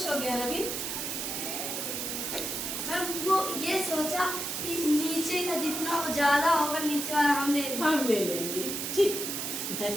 हो गया रवि? वो ये सोचा कि नीचे का जितना ज्यादा होगा नीचे वाला हम ले लेंगे। ठीक। The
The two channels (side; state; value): right; noise; hiss, 3 dB below the sound